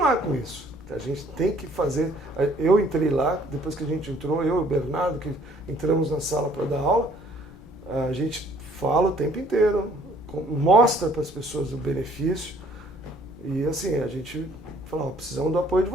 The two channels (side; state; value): both; normal; correlation 0.59